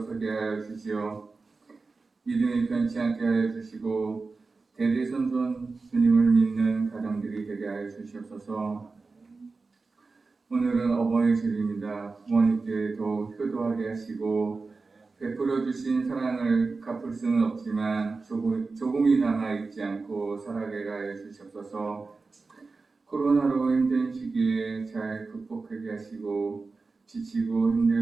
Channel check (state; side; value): quieter; left; 4.0 dB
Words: 하여 주시오. 믿음이 변치 않게 하여 주시고 대대손손 주님을 믿는 가정들이 되게 하여 주시옵소서. 오늘은 어버이 주일입니다. 부모님께 더욱 효도하게 하시고 베풀어 주신 사랑을 갚을 수는 없지만 조금이나마 잊지 않고 살아가게 하여 주시옵소서. 코로나로 힘든 시기에 잘 극복하게 하시고 지치고